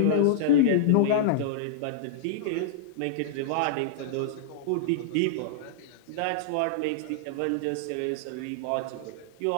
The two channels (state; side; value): different; both; correlation -0.02